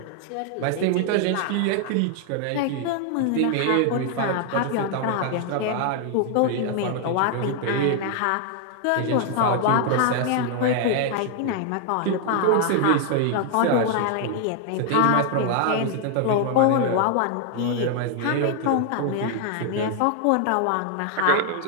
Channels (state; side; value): different; both; correlation 0.00